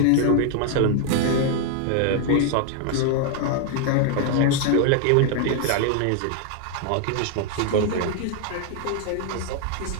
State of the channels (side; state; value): both; different; correlation 0.00